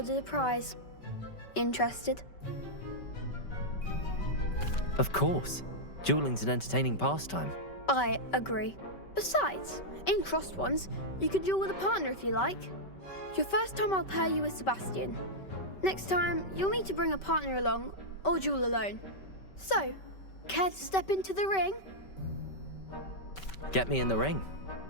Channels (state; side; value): late; right; 5.2 ms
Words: a prize. Interested? Of course. Dueling's an entertaining pastime. I agree. Besides, in crossed ones, you could duel with a partner if you like. Your first time I'll pair you with Sebastian. Next time, you'll need to bring a partner along or duel alone. So, care to step into the ring? Get me in the ring.